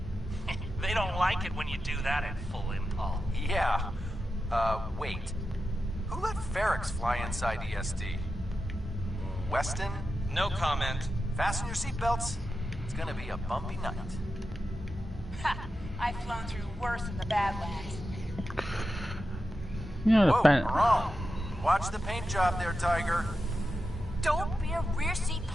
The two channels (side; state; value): both; normal; correlation 0.90